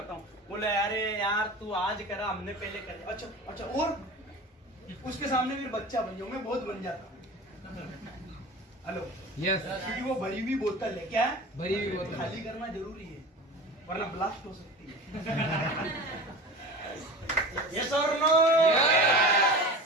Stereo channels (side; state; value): both; normal; correlation 0.34